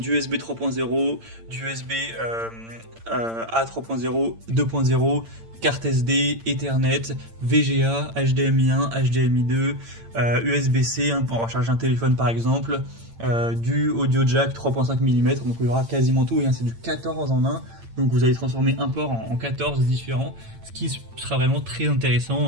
USB 3.0, du USB A 3.0, 2.0, carte SD, Ethernet, VGA, HDMI 1, HDMI 2, USB-C hein, pour recharger un téléphone par exemple, du audio jack 3.5 mm, donc il y aura quasiment tout, hein, c'est du 14 en 1, donc vous allez transformer un port en 14 différents, ce qui sera vraiment très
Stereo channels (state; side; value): late; left; 8.8 ms